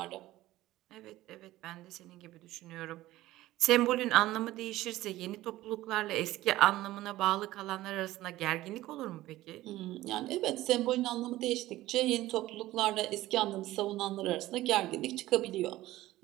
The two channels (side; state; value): left; quieter; 16.3 dB